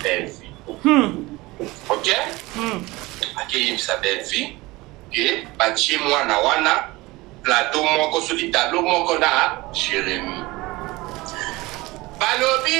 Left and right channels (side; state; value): left; quieter; 21.1 dB